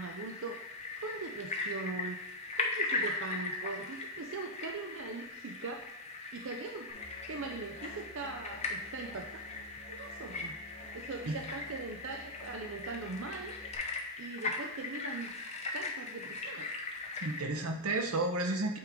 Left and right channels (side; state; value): both; normal; correlation -0.02